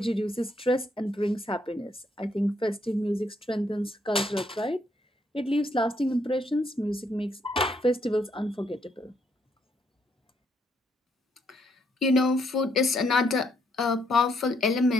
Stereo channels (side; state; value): both; normal; correlation 0.73